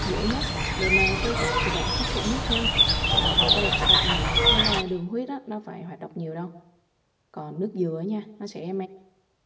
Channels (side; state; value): both; identical; correlation 1.00